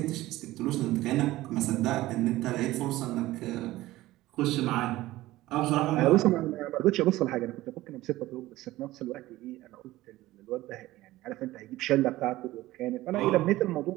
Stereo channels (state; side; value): quieter; left; 17.0 dB